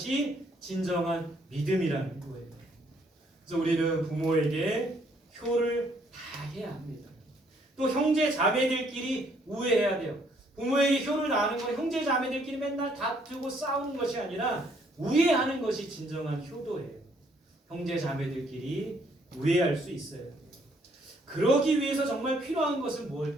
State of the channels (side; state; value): both; normal; correlation 0.67